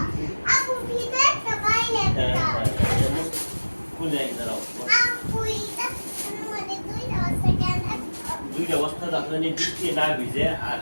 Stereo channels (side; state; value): both; inverted; correlation -1.00